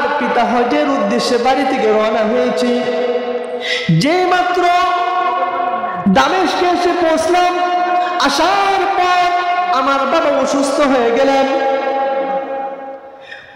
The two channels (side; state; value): both; identical; correlation 1.00